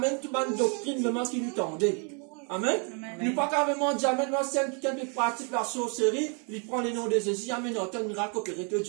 tout le doctrine vraiment qui nous tendait. Amen. Nous pas carrément dire, Amen, moi, c'est quelqu'un qui pratique la sorcellerie, il prend les noms de Jésus, Amen, il entend le miracle opéré, te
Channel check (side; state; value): left; quieter; 37.5 dB